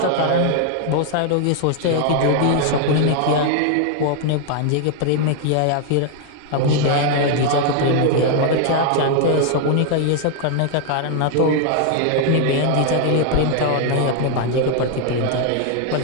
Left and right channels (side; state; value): both; different; correlation 0.00